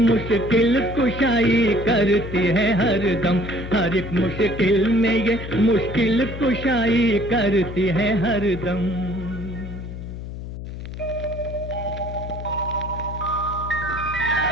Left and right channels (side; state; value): left; noise; hum, 9 dB below the sound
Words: کشائی کرتی ہے ہر دم ہر ایک مشکل میں یہ مشکل کشائی کرتی ہے ہر دم